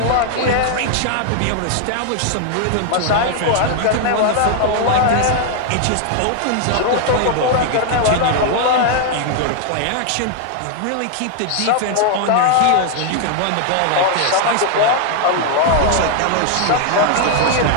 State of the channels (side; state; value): both; different; correlation 0.00